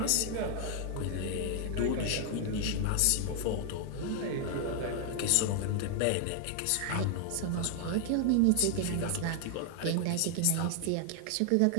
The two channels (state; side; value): different; both; correlation 0.00